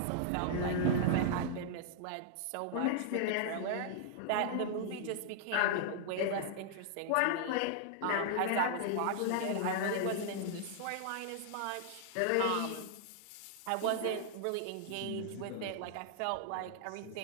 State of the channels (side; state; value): both; different; correlation -0.01